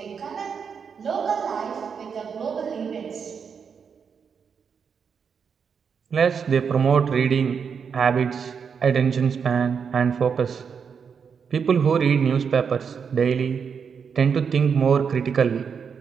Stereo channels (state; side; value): quieter; left; 6.5 dB